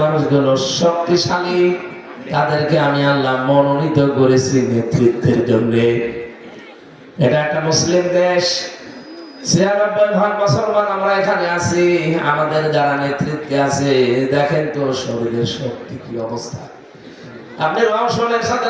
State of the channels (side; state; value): both; identical; correlation 1.00